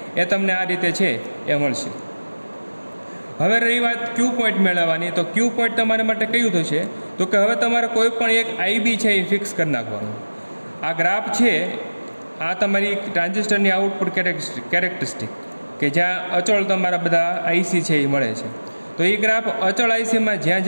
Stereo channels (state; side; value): inverted; both; correlation -1.00